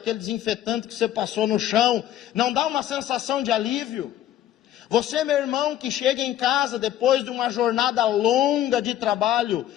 desinfetante que você passou no chão, não dá uma sensação de alívio? Você, meu irmão, que chega em casa depois de uma jornada longa de trabalho,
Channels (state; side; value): quieter; right; 12.3 dB